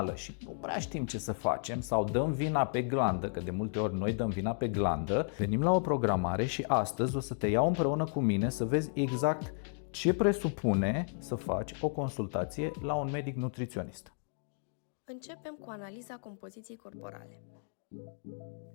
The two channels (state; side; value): silent; right; 55 dB below the other